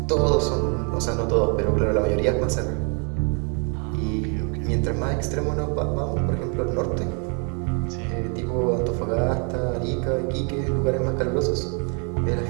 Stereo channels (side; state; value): left; quieter; 37.7 dB